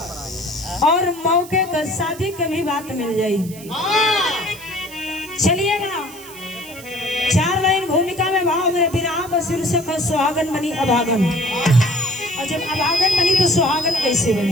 और मौके का शादी के भी बात मिल जाई। चलिएगा 4 लाइन भूमिका में भाव मेरे विराह का शीर्षक है सुहागन बनी अभागन, और जब अभागन बनी तो सुहागन कैसे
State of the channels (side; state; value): right; noise; hiss, 17 dB below the sound